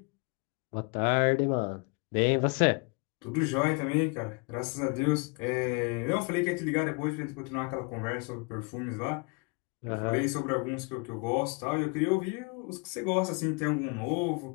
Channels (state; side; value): quieter; right; 31.7 dB